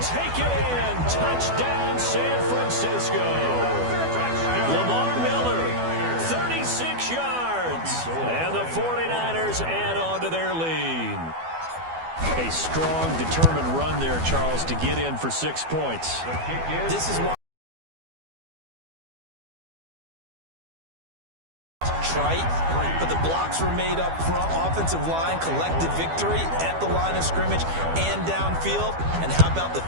it in. Touchdown, San Francisco. Lamar Miller, 36 yards. And the 49ers add on to their lead. A strong, determined run there, Charles, to get in for 6 points. This is why trite, but the blocks were made up front. Offensive line, collective victory at the line of scrimmage and downfield. And how about the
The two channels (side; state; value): left; late; 12 ms